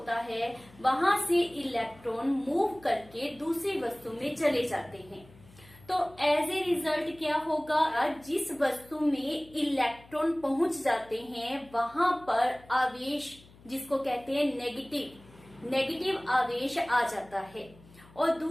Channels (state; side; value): noise; left; hum, 24 dB below the sound